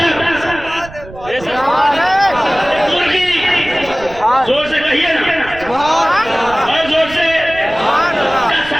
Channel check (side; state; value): right; noise; rumble, 17 dB below the sound